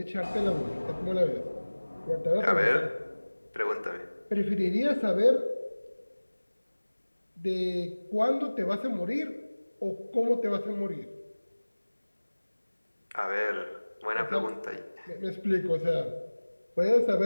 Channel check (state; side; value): inverted; both; correlation -1.00